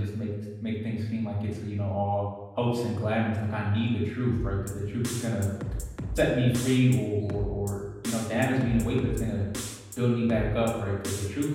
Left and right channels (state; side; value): identical; both; correlation 1.00